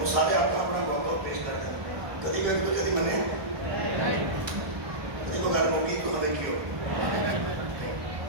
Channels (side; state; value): left; late; 1.2 ms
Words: وہ سارے اپنا موقع پیش کرتے ہیں کدی میں کدی منے کدی کو گھر موقعی تو ہمیں کیوں